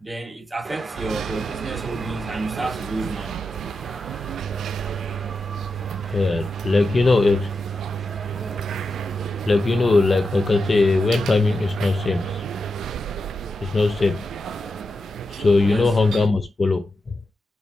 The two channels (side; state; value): both; normal; correlation 0.88